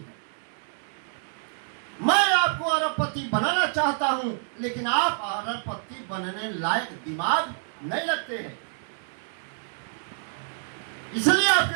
मैं आपको अरबपति बनाना चाहता हूं, लेकिन आप अरबपति बनने लायक दिमाग नहीं रखते हैं, इसलिए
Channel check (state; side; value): silent; left; digital silence